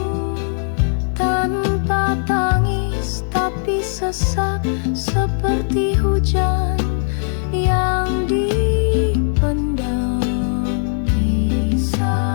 tanpa tangis tapi sesak seperti hujan yang dipendam.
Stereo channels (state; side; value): silent; right; 60 dB below the other